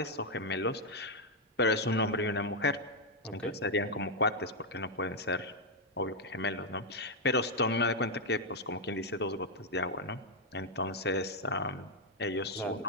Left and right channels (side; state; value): both; normal; correlation -0.01